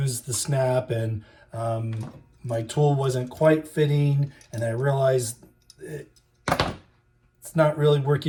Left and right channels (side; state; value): both; identical; correlation 1.00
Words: the snap and my tool wasn't quite fitting, and I realized it's not really